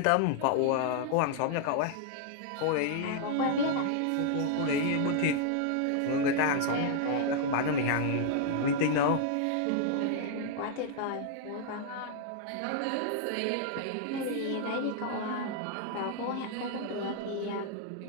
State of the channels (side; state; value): both; different; correlation -0.01